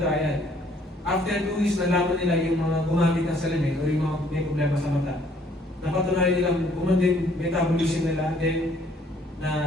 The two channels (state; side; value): normal; both; correlation 0.63